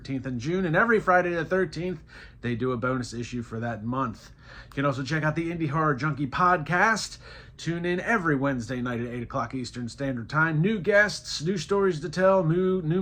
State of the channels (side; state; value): both; identical; correlation 1.00